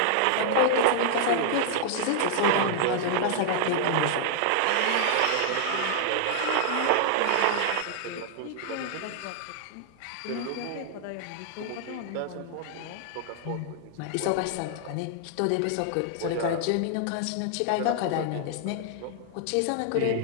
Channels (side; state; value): both; different; correlation -0.01